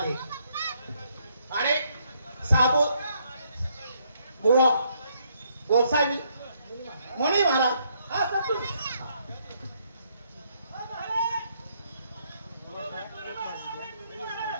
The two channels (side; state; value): both; inverted; correlation -0.71